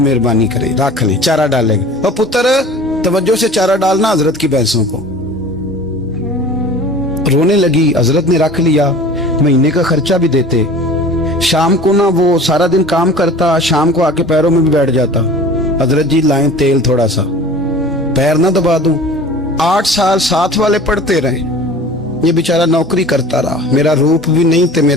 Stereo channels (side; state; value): both; normal; correlation 0.42